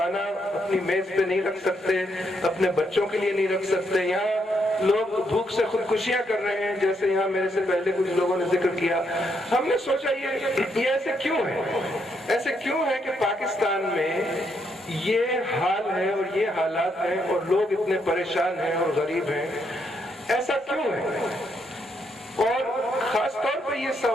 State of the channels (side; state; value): both; normal; correlation 0.76